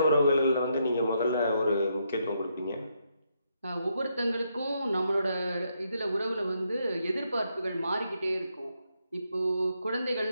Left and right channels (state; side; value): inverted; both; correlation -0.78